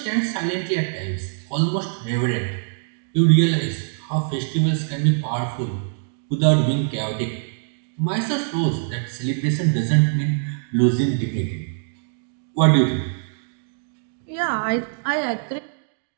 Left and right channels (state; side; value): silent; left; digital silence